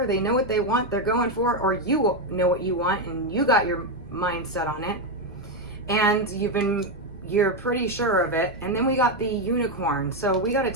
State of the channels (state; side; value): normal; both; correlation 0.06